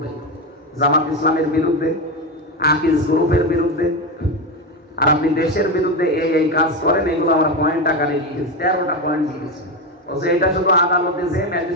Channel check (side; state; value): both; normal; correlation 0.14